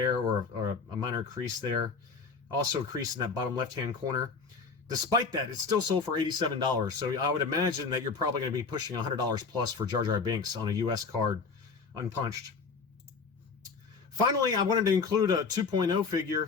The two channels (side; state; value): right; quieter; 4.9 dB